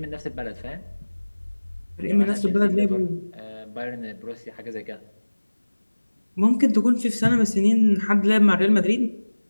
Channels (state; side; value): inverted; both; correlation -1.00